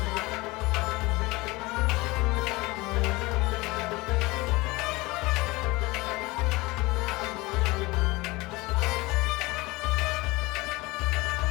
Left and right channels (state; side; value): quieter; right; 22.4 dB